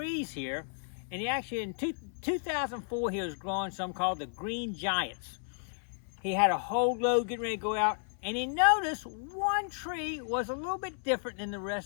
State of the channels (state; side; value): silent; right; 56 dB below the other